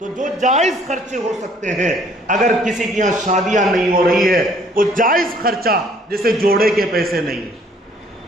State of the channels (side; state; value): both; normal; correlation 0.60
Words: جو جائز خرچے ہو سکتے ہیں، اگر کسی کی یہاں شادیاں نہیں ہو رہی ہے، وہ جائز خرچہ جیسے جوڑے کے پیسے نہیں،